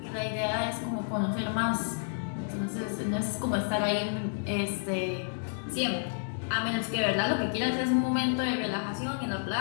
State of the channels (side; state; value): right; silent; digital silence